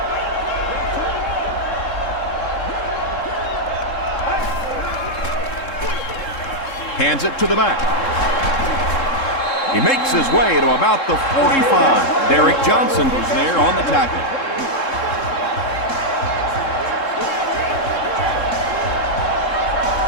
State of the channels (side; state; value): right; late; 3.7 ms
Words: Hands it to the back. He makes his way to about the 45. Derek Johnson was there on the tackle.